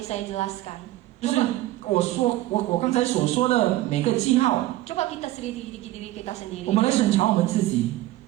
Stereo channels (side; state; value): left; quieter; 16.1 dB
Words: saya jelaskan. 就是我刚才所说的每个记号， Coba kita selidiki diri kita 我 sendiri. 们来审查我们自己，